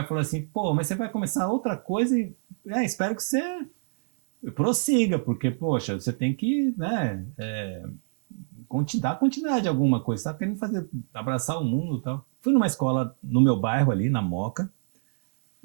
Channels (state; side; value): silent; left; digital silence